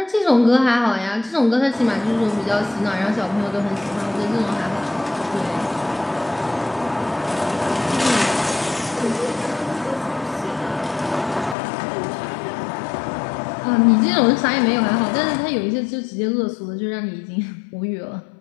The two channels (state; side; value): drops out; right; at 11.6 s